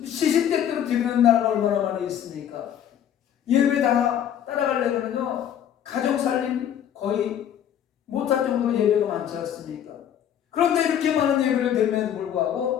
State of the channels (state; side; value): quieter; right; 9.8 dB